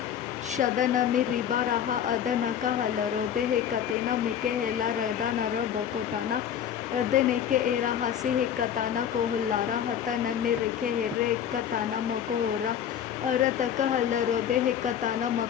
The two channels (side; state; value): right; quieter; 9.2 dB